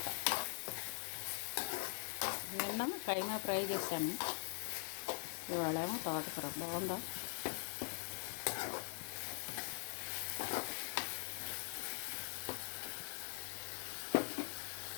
నిన్న కైమా ఫ్రై చేశాను, ఇవాళేమో తోటకూర. బాగుందా?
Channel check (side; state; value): right; silent; digital silence